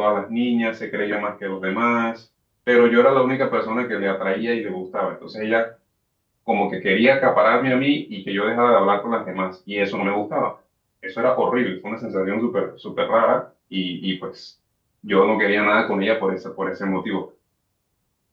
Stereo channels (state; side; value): identical; both; correlation 1.00